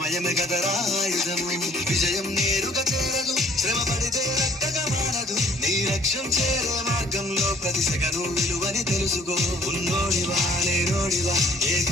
కదరా ఆయుధము విజయం నేరుగా చేరదు శ్రమ పడితే రక్కగా మారదు నీ లక్ష్యం చేరే మార్గంలో ప్రతి సెకను విలువని తెలుసుకో ఉన్నోడివా లేనోడివా ఏ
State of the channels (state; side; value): normal; both; correlation 0.57